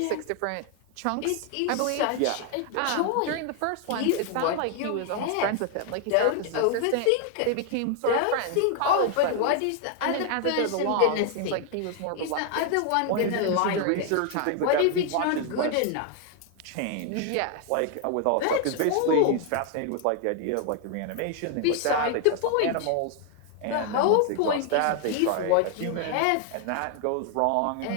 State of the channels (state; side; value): different; both; correlation 0.00